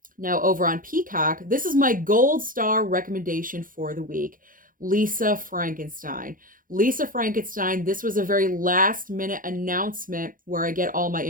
Now, over on Peacock, this is my gold star recommendation for the week. Lisa Frankenstein. Lisa Frankenstein, this was a very last minute announcement where I get all my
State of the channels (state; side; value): late; left; 0.40 ms